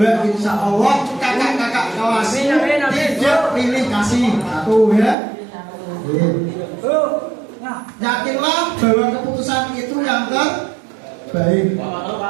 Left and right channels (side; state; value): left; drops out; at 5.2 s